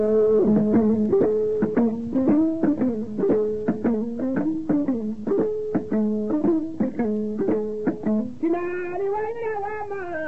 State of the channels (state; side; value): identical; both; correlation 1.00